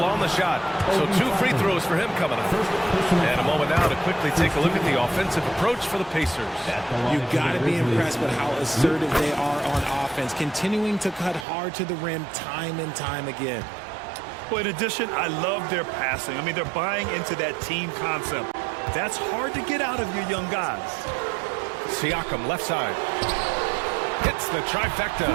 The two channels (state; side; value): drops out; left; at 11.5 s